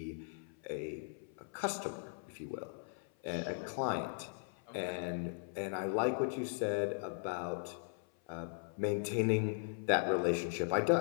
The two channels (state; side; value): silent; right; 52 dB below the other